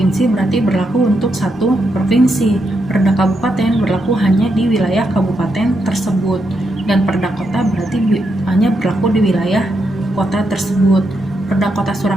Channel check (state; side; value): normal; both; correlation 0.82